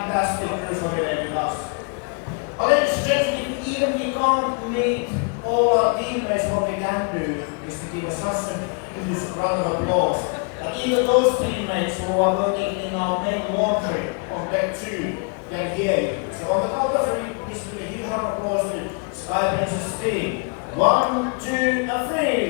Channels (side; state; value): right; quieter; 37.7 dB